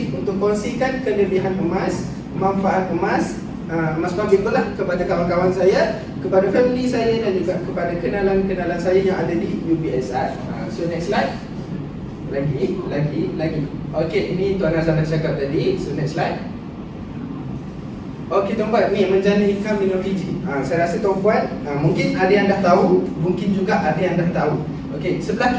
untuk kongsikan kelebihan emas, manfaat emas, emas public lah kepada kawan-kawan saya, kepada family saya dan juga kepada kenalan-kenalan saya yang ada di UBSI. So next slide. Lagi. Okay, ini Tuan Azhar dah cakap tadi. So next slide. Okey tuan-puan, ni menjana income dengan PG. Saya rasa tuan-puan mungkin ada yang dah tahu, mungkin juga ada yang dah tahu. Okey, sebelah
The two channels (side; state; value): both; identical; correlation 1.00